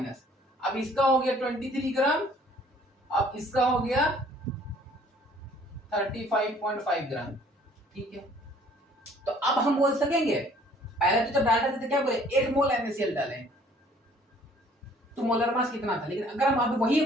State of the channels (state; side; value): normal; both; correlation 0.57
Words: अब इसका हो गया 23 ग्राम, अब इसका हो गया 35.5 ग्राम, ठीक है। तो अब हम बोल सकेंगे, पहले तो जब डाल रहे थे तो क्या बोले, 1 मोल NaCl डालें तो मोलर मास कितना था। लेकिन अगर हम अब वही